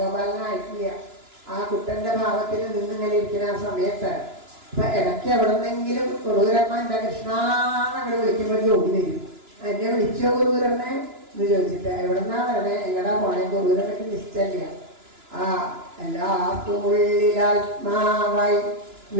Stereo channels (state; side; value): late; left; 2.9 ms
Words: ആ കുട്ടൻ്റെ ഭാവത്തിൽ നിന്നിങ്ങനെ ഇരിക്കുന്ന ആ സമയത്ത് ഇപ്പം ഇടയ്ക്ക് എവിടെ നിന്നെങ്കിലും കുറൂരമ്മ എൻ്റെ കൃഷ്ണാന്നങ്ങനെ വിളിക്കുമ്പോഴേക്കും ഓടി വരും. എന്നെ വിളിച്ചോ കുറൂരമ്മ എന്ന് ചോദിച്ചിട്ട് എവിടെന്നാ വരണേ, എങ്ങടാ പോണേ, കുറൂരമ്മയ്ക്ക് നിശ്ചയില്ല. ആ എല്ലാവർക്കും ഉള്ളിലാത്മാവായി